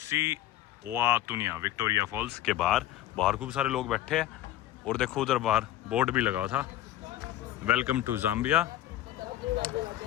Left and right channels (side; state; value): right; quieter; 13.6 dB